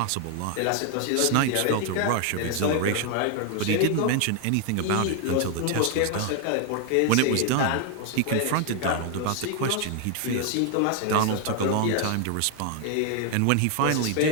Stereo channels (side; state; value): both; different; correlation 0.00